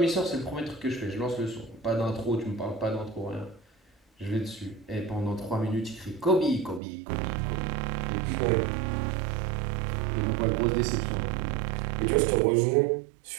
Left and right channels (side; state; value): left; drops out; at 6.8 s